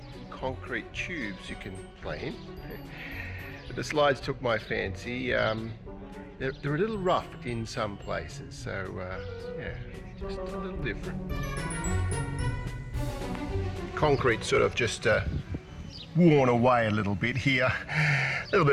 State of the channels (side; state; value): both; identical; correlation 1.00